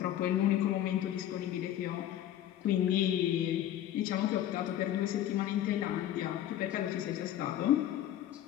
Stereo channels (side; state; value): right; quieter; 12.0 dB